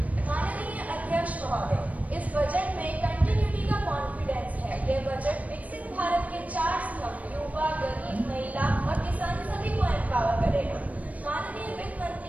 माननीय अध्यक्ष महोदय, इस budget में continuity का confidence है। यह budget विकसित भारत के 4 स्तंभ युवा, गरीब, महिला और किसान सभी को एम्पावर करेगा। माननीय वित्त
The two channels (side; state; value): left; late; 0.070 ms